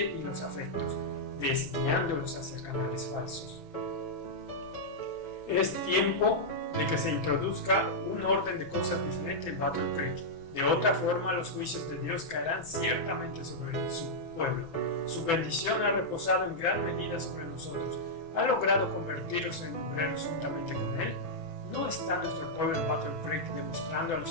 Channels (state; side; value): late; right; 6.0 ms